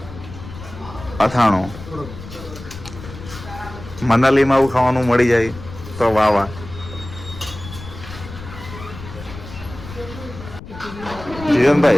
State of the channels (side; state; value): left; noise; rumble, 13 dB below the sound